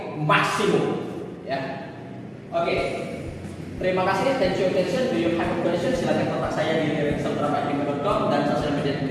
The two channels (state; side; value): identical; both; correlation 1.00